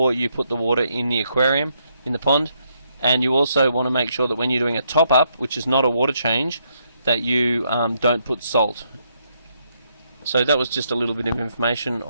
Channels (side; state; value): both; inverted; correlation -0.75